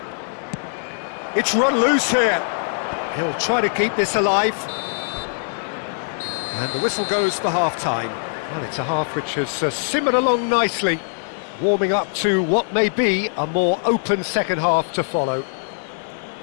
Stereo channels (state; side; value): silent; right; digital silence